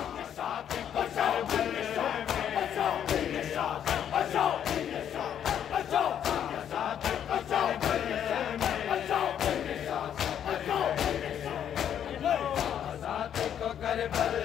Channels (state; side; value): quieter; right; 9.4 dB